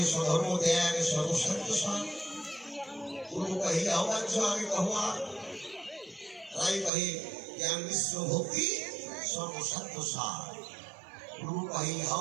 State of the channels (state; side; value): drops out; left; at 6.9 s